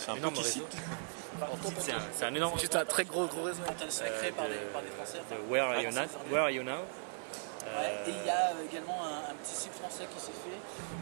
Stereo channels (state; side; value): silent; left; 53 dB below the other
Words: réseau. C'est un énorme. C'est juste un très gros réseau. De Where Are You Now. Et il y a également un petit site français qui s'est